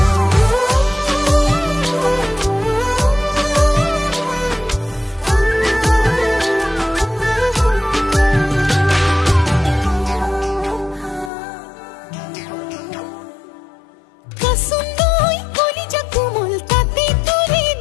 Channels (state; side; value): drops out; right; at 11.3 s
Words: kasundoi koli jakumol tate tore